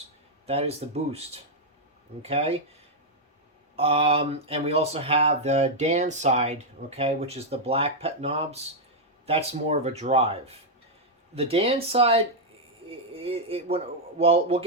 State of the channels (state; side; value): normal; both; correlation -0.03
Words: That is the boost. Okay. And we also have the Dan side, okay, which is the black pet knobs. That's more of a drive. The Dan side, well, we'll